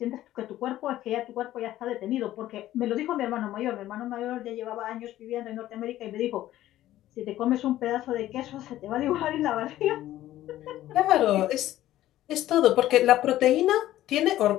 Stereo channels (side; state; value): right; quieter; 14.1 dB